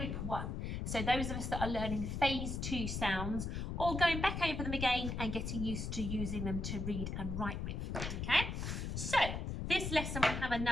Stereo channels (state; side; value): noise; left; rumble, 3 dB below the sound